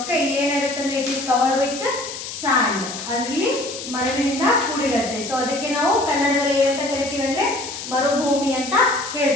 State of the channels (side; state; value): left; noise; hiss, 9 dB below the sound